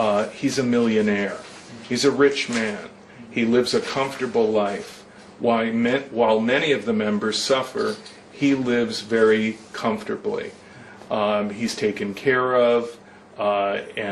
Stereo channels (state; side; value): identical; both; correlation 1.00